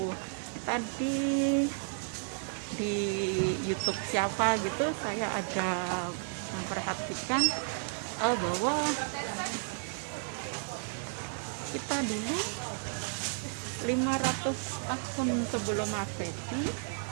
tadi di YouTube siapa gitu, saya ada memperhatikan bahwa kita dulu 500 tahun sebelum Masehi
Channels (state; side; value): silent; left; 56 dB below the other